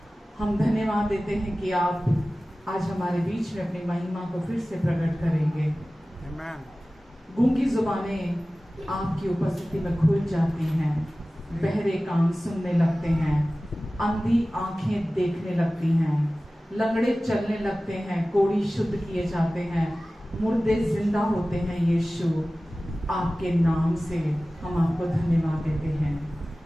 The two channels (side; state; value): both; normal; correlation 0.97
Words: हम धन्यवाद देते हैं कि आप आज हमारे बीच में अपनी महिमा को फिर से प्रकट करेंगे। Amen. गूंगी जुबानें आपकी उपस्थिति में खुल जाती हैं, बहरे कान सुनने लगते हैं, अंधी आंखें देखने लगती हैं, लंगड़े चलने लगते हैं, कोढ़ी शुद्ध किए जाते हैं, मुर्दे जिंदा होते हैं। यीशु आपके नाम से हम आपको धन्यवाद देते हैं।